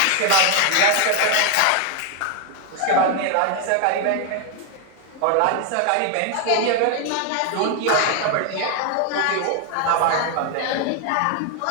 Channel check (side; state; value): both; different; correlation 0.01